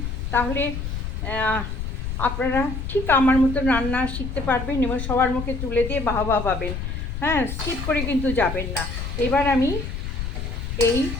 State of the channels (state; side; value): noise; left; rumble, 4 dB below the sound